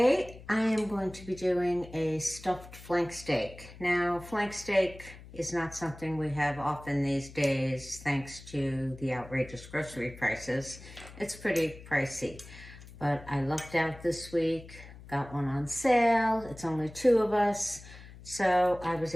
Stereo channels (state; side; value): noise; left; hum, 17 dB below the sound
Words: I am going to be doing a stuffed flank steak. Now, flank steak is not something we have often these days thanks to the outrageous grocery prices. It's pretty pricey, but I lucked out this week, got one on sale. It's only 2 of us, so I was